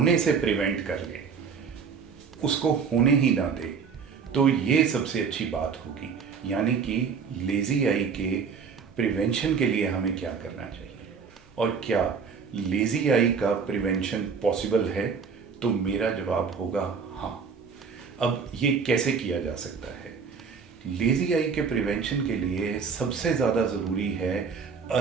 से प्रिवेंट कर लें, उसको होने ही ना दें, तो ये सबसे अच्छी बात होगी। यानी कि लेज़ी आई के प्रिवेंशन के लिए हमें क्या करना चाहिए और क्या लेज़ी आई का प्रिवेंशन पॉसिबल है? तो मेरा जवाब होगा हाँ। अब ये कैसे किया जा सकता है? लेज़ी आई के प्रिवेंशन के लिए सबसे ज़्यादा ज़रूरी है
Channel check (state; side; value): quieter; left; 5.9 dB